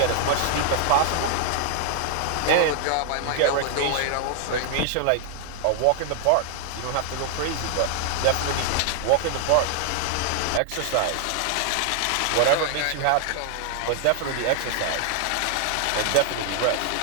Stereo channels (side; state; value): both; different; correlation 0.00